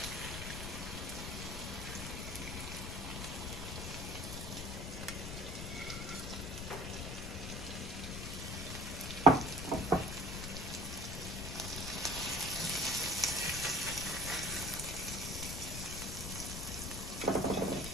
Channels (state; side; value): noise; left; rumble, 5 dB below the sound